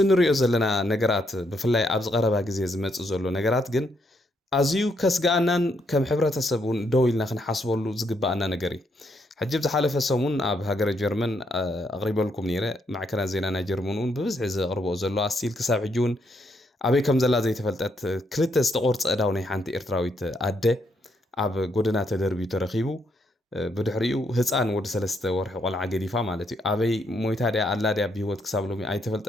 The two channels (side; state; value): both; normal; correlation 0.76